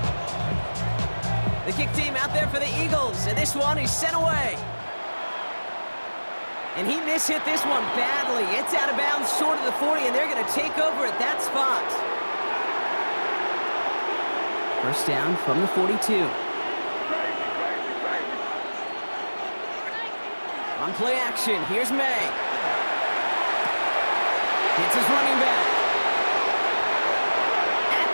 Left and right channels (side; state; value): both; inverted; correlation -1.00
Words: The kick team out there for the Eagles, and this one is sent away. And he mishit this one badly. It's out of bounds short of the 40, and they're going to take over at that spot. First down from the 42. On play action, here's May. It's his running back. At